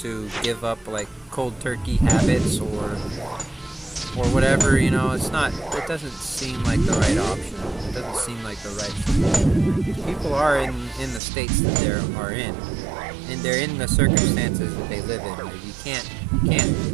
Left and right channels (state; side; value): drops out; left; at 11.2 s